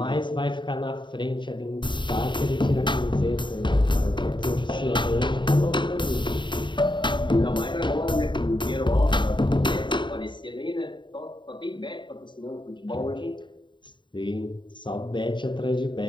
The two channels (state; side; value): late; right; 0.23 ms